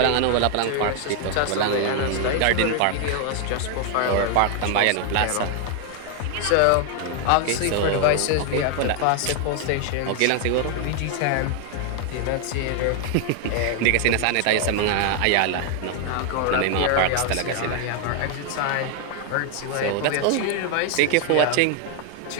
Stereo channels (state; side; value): different; both; correlation 0.00